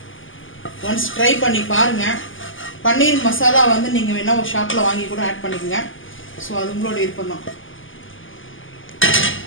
once try பண்ணி பாருங்கள். பன்னீர் மசாலா வந்து நீங்கள் வேணால் ஒரு ஷாப்பில் வாங்கி கூட ஆட் பண்ணிக்கோங்க. ஸோ அது உங்களோட விருப்பம் தான்.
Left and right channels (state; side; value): late; right; 0.58 ms